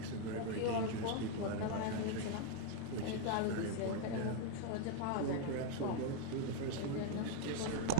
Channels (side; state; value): both; different; correlation 0.01